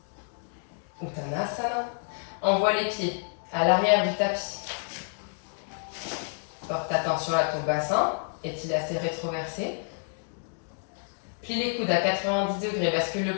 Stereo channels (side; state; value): right; silent; 59 dB below the other